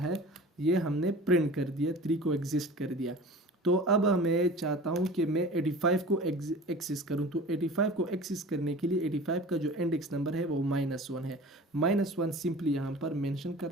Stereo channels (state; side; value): normal; both; correlation 0.39